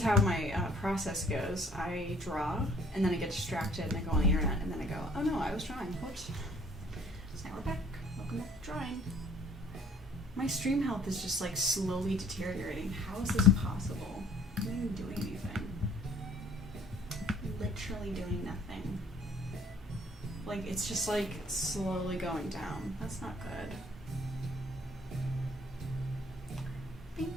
how my process goes. I draw, and then I get distracted, and I go on the internet, and then I go, oh no, I was drawing. Whoops. So now we're back. Welcome back to drawing. My stream health is just like slowly deteriorating. How is this possible? I'm not even doing anything. Literally doing nothing. Like, it's just, like, slowly going down. That's not good.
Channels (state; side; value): normal; both; correlation 0.57